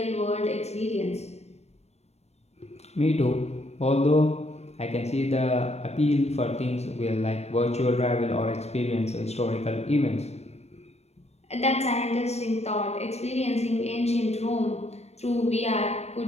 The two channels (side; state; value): right; late; 0.31 ms